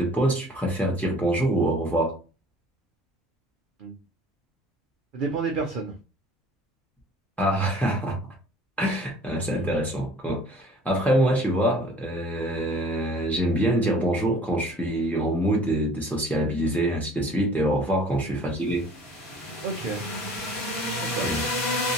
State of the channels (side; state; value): both; normal; correlation 0.50